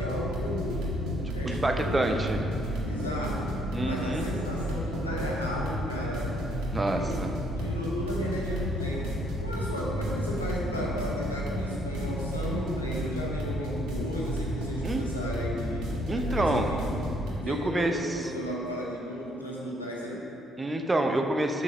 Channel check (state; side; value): normal; both; correlation 0.68